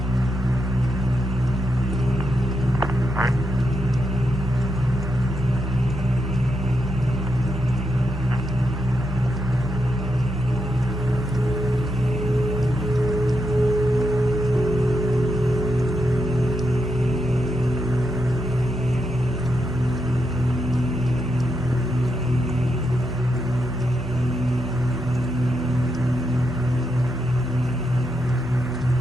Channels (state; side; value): normal; both; correlation 0.84